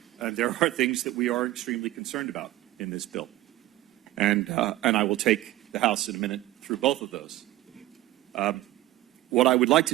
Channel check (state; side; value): quieter; left; 15.9 dB